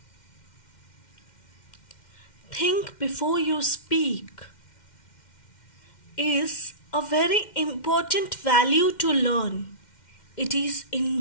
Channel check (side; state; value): right; late; 2.1 ms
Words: Think before you speak is a very important value to learn. It is